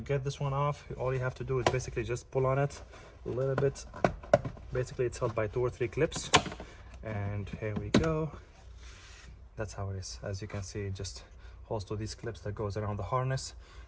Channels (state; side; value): identical; both; correlation 1.00